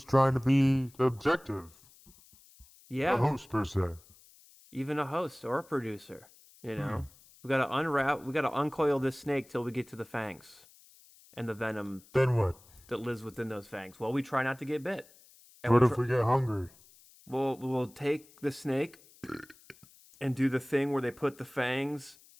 trying to be objective. Yeah. A host, per se. Even a host or a producer, We got to uncoil this snake till we get to the fangs and the venom. Then what? That lives within those fangs. Well, we try not to get bit. And what if we get hungry? We'll take the snake and do the thing where they put the fangs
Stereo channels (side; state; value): left; noise; hiss, 26 dB below the sound